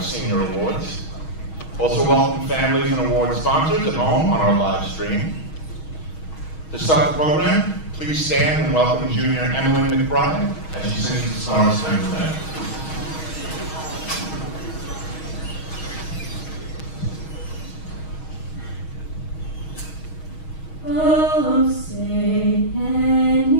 senior awards. Also welcome families and award sponsors at home on our live stream. To start the program, please stand and welcome junior Emily McBride as she sings the Star Spangled Banner. Oh, say, can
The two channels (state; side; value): late; right; 6.3 ms